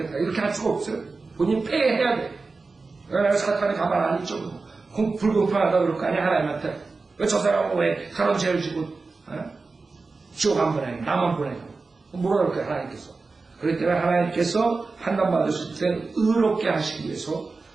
이렇게 할 수가 없어요. 본인이 폐해야 돼. 내가 사탄이 가만 안 있죠. 불공평하다 그럴 거 아니야 하나님한테. 왜 저 사람은 왜 그런 죄를 지고 지옥 안 보내고 나만 보내고 뭐라 그럴 거야 하나님께서. 그렇기 때문에 하나님께서 판단받으실 때 의롭게 하시기 위해서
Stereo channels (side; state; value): left; quieter; 4.0 dB